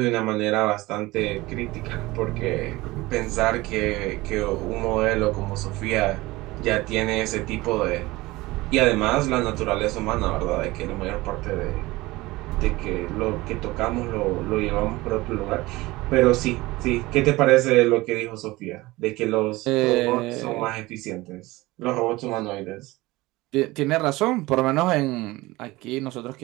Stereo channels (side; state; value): left; quieter; 20.1 dB